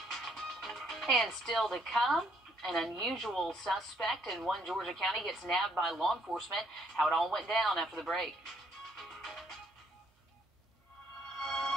And still to come, an unusual suspect in one Georgia county gets nabbed by law enforcement. How it all went down after the break.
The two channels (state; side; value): normal; both; correlation 0.69